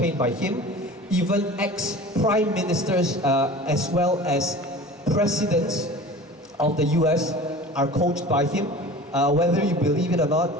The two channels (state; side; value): normal; both; correlation 0.39